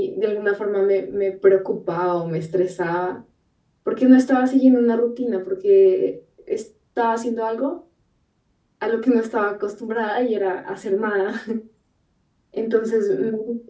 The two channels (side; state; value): both; identical; correlation 1.00